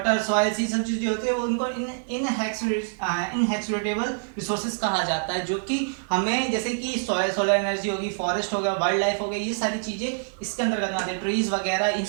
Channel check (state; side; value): silent; left; digital silence